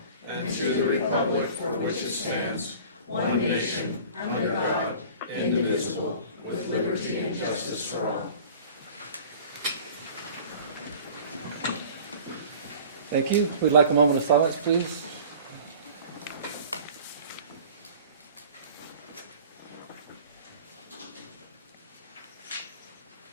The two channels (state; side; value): inverted; both; correlation -0.44